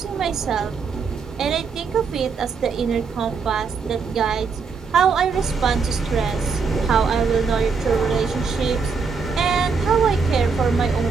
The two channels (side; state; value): left; quieter; 5.2 dB